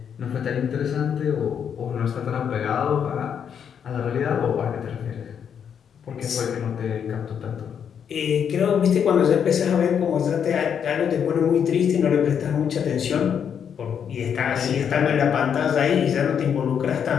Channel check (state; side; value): quieter; right; 7.9 dB